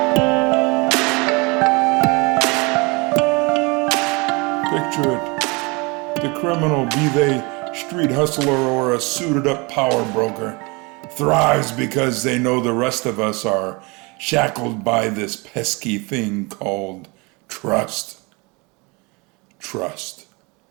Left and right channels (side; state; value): left; quieter; 27.8 dB